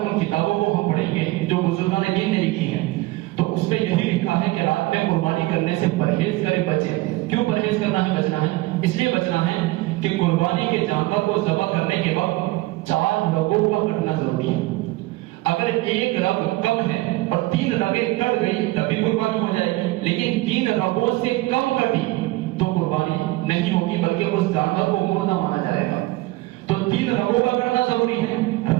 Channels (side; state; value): left; quieter; 19.6 dB